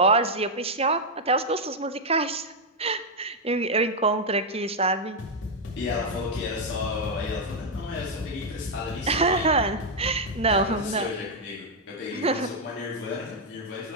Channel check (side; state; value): both; normal; correlation -0.01